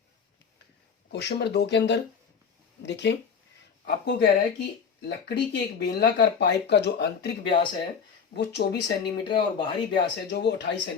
क्वेश्चन नंबर 2 के अंदर देखें, आपको कह रहा है कि लकड़ी के एक बेलनाकार पाइप का जो आंतरिक व्यास है वो 24 सेंटीमीटर है और बाहरी व्यास है जो वो 28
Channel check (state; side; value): quieter; right; 6.4 dB